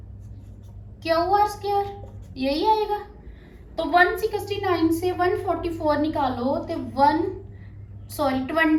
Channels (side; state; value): both; identical; correlation 1.00